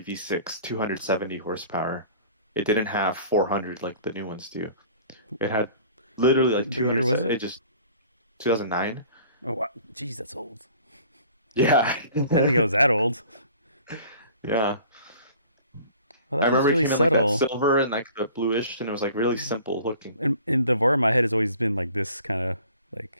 V6, 270 horsepower. It didn't have 400 like the new ones do. It had Literally like What year was 200. It it? just 2009. Oh, wow. Jeez, that's old. Yeah. I didn't think it was that old. Yeah. Well, I that feels remember it really came in like that subtle. silver and like the bluish, and it was like really simple looking. And the Vora in my head has always been like this kind of like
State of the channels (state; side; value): inverted; both; correlation -0.48